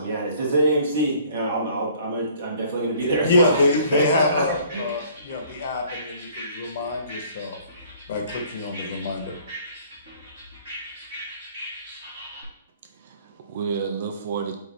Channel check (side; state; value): both; inverted; correlation -0.56